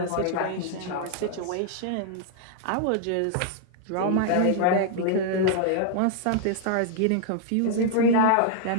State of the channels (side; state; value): both; different; correlation -0.01